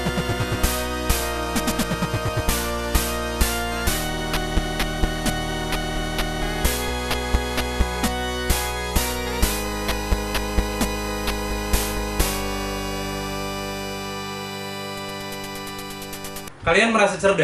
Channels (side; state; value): both; identical; correlation 1.00